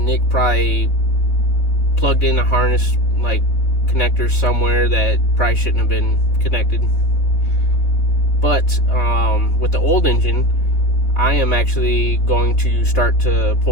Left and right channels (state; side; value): late; right; 3.6 ms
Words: probably plugged in a harness like connector somewhere that probably shouldn't have been connected. But with the old engine, I am actually going to start to